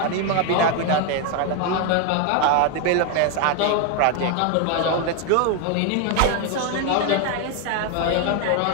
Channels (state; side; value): different; both; correlation 0.01